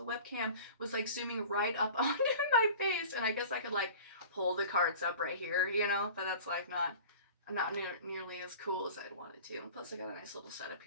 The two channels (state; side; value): inverted; both; correlation -0.40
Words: webcam was zooming right up onto my face, and I guess I could pull the cards up right here, but that's not nearly as cool as I'd wanted to. Plus I got a nice little setup